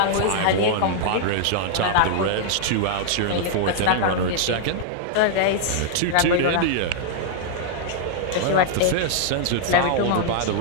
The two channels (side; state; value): both; different; correlation -0.01